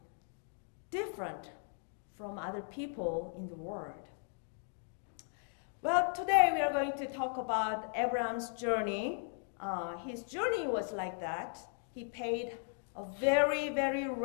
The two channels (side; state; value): right; silent; 53 dB below the other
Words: different from other people in the world. Well, today we are going to talk about Abraham's journey. His journey was like that. He paid a very, very